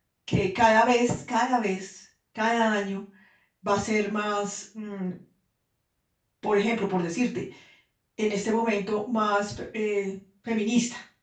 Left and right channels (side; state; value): both; identical; correlation 1.00